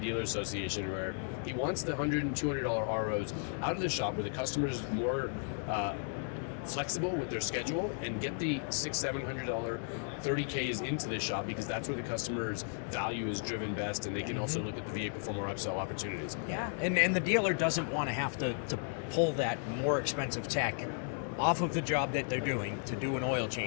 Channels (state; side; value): silent; right; 55 dB below the other